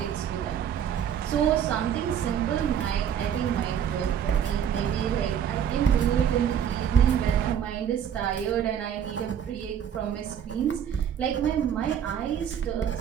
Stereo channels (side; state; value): left; quieter; 8.8 dB